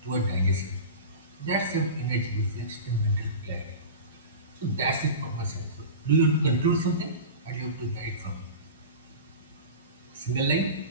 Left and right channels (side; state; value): both; inverted; correlation -0.31